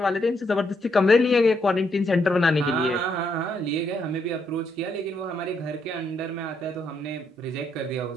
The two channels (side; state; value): both; normal; correlation 0.76